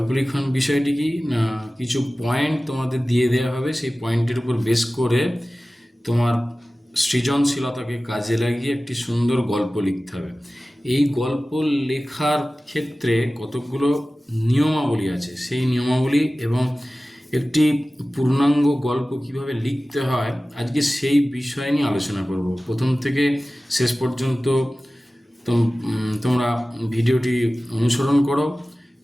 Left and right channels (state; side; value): normal; both; correlation 0.96